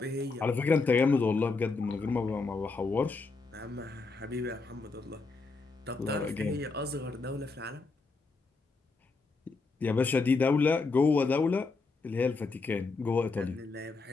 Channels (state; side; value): quieter; right; 4.0 dB